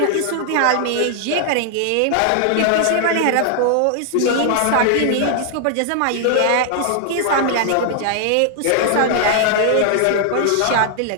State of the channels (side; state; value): both; different; correlation 0.00